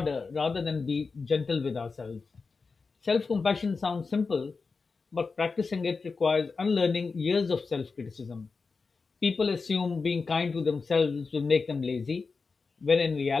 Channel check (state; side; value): quieter; right; 4.5 dB